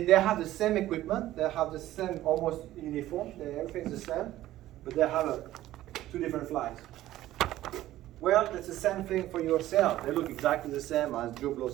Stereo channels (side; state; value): left; quieter; 14.6 dB